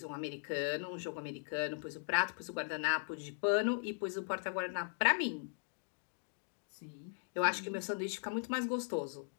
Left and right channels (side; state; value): right; silent; digital silence